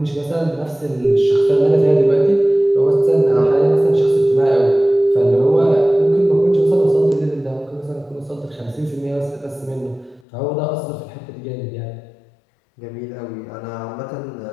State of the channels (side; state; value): right; drops out; at 10.2 s